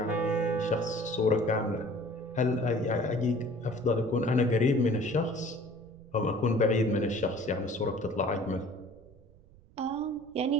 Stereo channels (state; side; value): noise; right; rumble, 25 dB below the sound